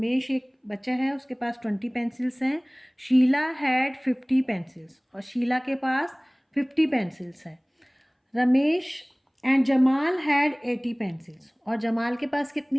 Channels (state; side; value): identical; both; correlation 1.00